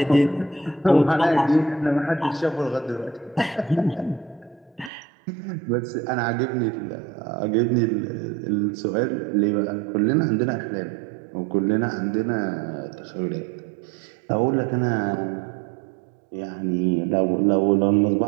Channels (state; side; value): drops out; left; at 4.9 s